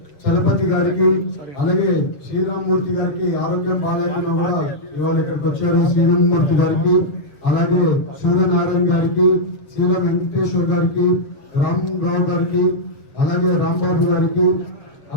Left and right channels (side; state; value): right; late; 7.5 ms